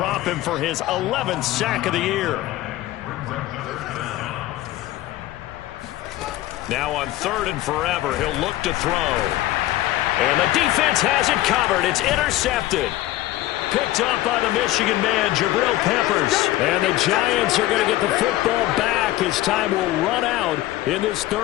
him for his 11th sack of the year. Now on 3rd and forever, he'll look to throw. And the defense has it covered. It's intercepted. Picked up by the Michigan man, Jabril Peppers. And the Giants are going to get the football back as time will run out in this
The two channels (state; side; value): quieter; right; 15.8 dB